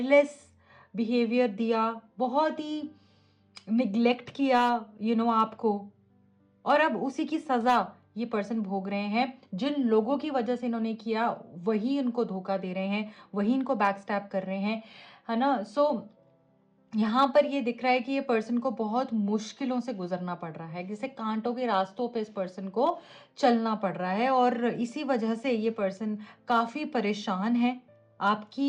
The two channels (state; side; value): identical; both; correlation 1.00